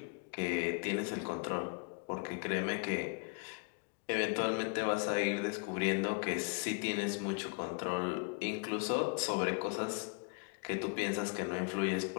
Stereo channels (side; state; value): right; quieter; 35.7 dB